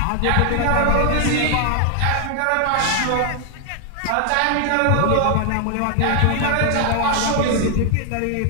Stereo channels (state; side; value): different; both; correlation 0.00